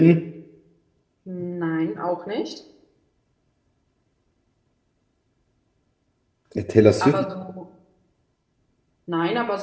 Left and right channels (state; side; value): identical; both; correlation 1.00